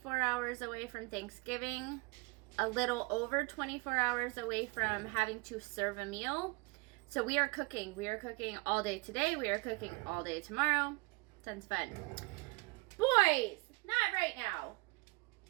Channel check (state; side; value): quieter; left; 26.0 dB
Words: hours away from Thanksgiving, a little over 24 hours away from having to serve a meal. So we are cooking. We are cooking all day today. We are cooking all day tomorrow. Sounds fun. Boys, not right now.